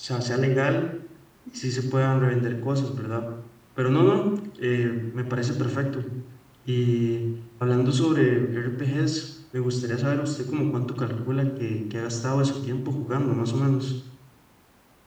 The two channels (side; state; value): both; identical; correlation 1.00